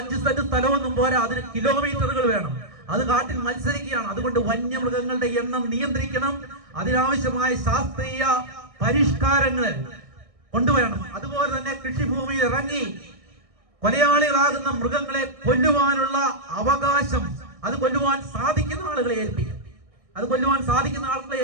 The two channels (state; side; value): late; left; 1.6 ms